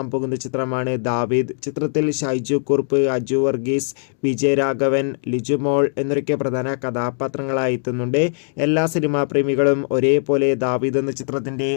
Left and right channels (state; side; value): silent; right; digital silence